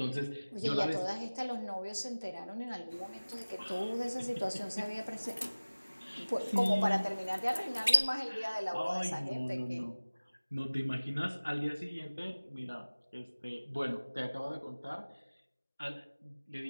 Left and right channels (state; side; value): inverted; both; correlation -1.00